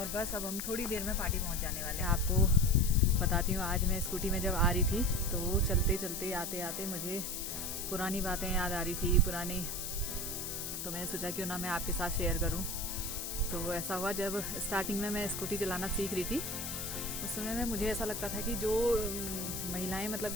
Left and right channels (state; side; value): noise; left; hiss, 5 dB below the sound